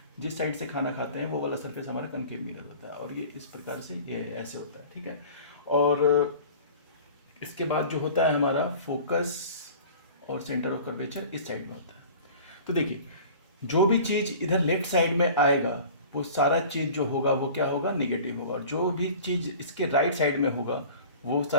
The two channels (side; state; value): both; inverted; correlation -0.43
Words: जिस साइड से खाना खाते हैं वो वाला सरफेस हमारा कनकेव मिरर होता है, और ये इस प्रकार से ये ऐसे होता है। ठीक है, और इसके बाद जो होता है हमारा फोकस और सेंटर ऑफ कर्वेचर इस साइड में होता है। तो देखिए, जो भी चीज़ इधर लेफ्ट साइड में आएगा वो सारा चीज़ जो होगा वो क्या होगा, नेगेटिव होगा, और जो भी चीज़ इसके राइट साइड में होगा वो